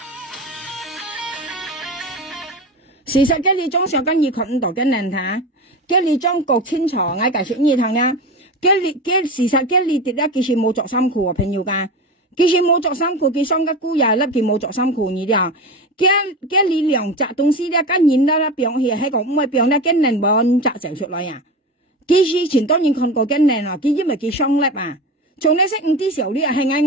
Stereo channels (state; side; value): normal; both; correlation 0.26